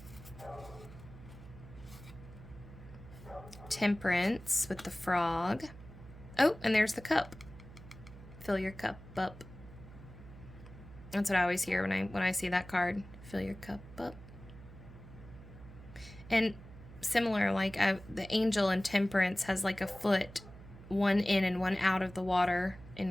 Temperance with the frog. Oh, and there's the cup. Fill your cup up. That's what I always hear when I see that card. Fill your cup up. And similar, like the angel in Temperance has like a foot, one in and one out of the water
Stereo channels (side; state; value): right; noise; hum, 17 dB below the sound